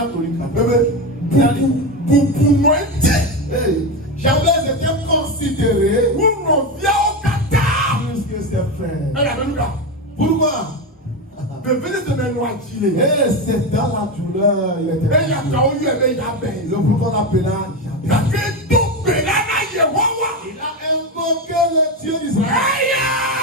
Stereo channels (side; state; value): both; normal; correlation 0.15